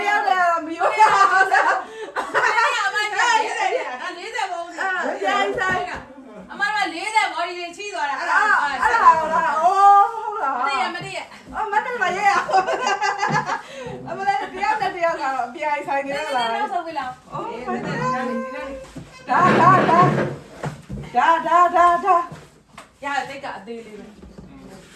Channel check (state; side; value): identical; both; correlation 1.00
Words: ယိုးရအောင်လား အဲ့ရအမနဲ့40ပုံနေ ဆိုင်ဆိုင် အမက40ဘော်ဒီတွေချီးသွားတာအဲ့ဒါ အဲ့ဒါလားအိုးဟုတ်လား မတည့်ရမတည့်ရ အမနဲ့မရဲရအမလည်းတယောက်နဲ့တယောက်ကတော့အပြိုင်ဆိုင်နေလား နောက်ဆုံးပြီလား အိုး ဒီ ဒါ နေ့ ရတိတ်ကအသေးလေးပဲ